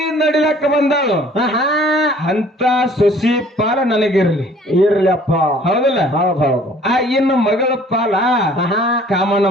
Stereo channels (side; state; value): both; normal; correlation 0.54